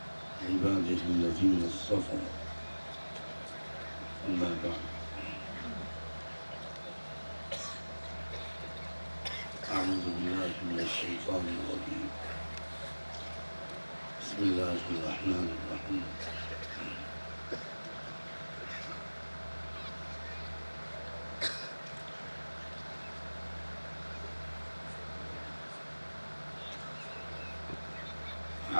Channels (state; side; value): inverted; both; correlation -1.00